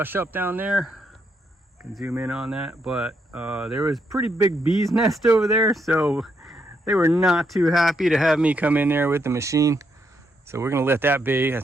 up down there. Can zoom in on that, but there was pretty big bee's nest over there, so they were not too happy to have me come in there with the machine. So we're gonna let that be. I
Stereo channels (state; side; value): normal; both; correlation 0.77